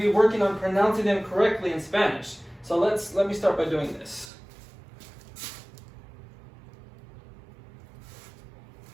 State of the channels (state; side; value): drops out; left; at 4.3 s